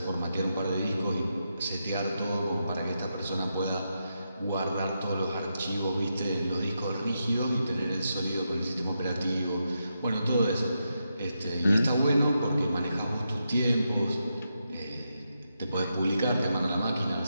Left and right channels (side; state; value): both; inverted; correlation -0.85